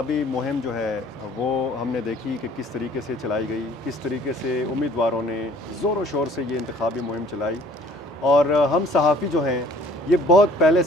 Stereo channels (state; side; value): normal; both; correlation 0.54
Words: مہم جو ہے وہ ہم نے دیکھی کہ کس طریقے سے چلائی گئی، کس طریقے سے امیدواروں نے زور و شور سے یہ انتخابی مہم چلائی، اور ہم صحافی جو ہیں یہ بہت پہلے